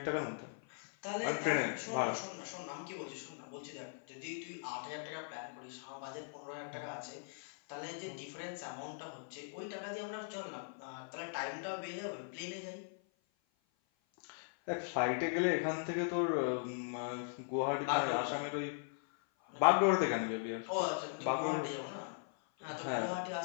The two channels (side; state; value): right; silent; 52 dB below the other